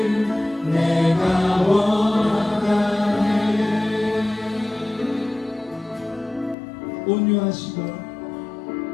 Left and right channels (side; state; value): right; drops out; at 6.6 s